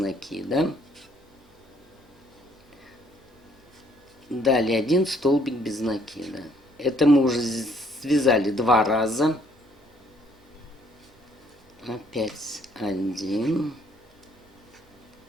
Далее 1 столбик без накида. Это мы уже связали 2 раза. Опять 1.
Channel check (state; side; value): normal; both; correlation 0.65